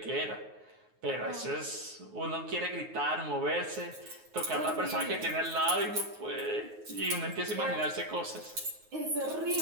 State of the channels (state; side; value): late; left; 9.4 ms